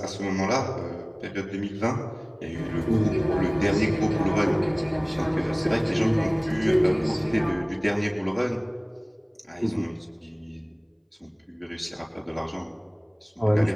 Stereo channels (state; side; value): identical; both; correlation 1.00